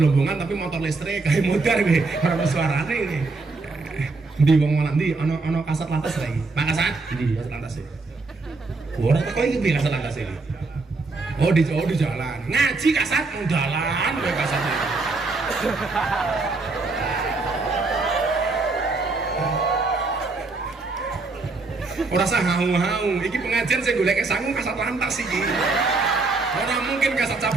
tapi motor listrik kayak motor kowe, ora ono suarane iki. Ndi wong ndi ana kasat lantas lagi. Pak Kasat, ndi kasat lantas e. Orang kok iki piye kasat lantas iki? Oh di jalan. Ngaji kasat nang dalan kowe kasat. Ora usah hau-hau, iki pengajian sing goleke sangu kasat lantas iki. Ora mungkin kasat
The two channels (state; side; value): quieter; left; 3.7 dB